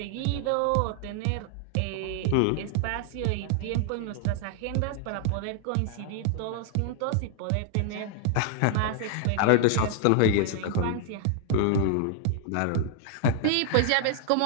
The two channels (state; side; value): different; both; correlation 0.00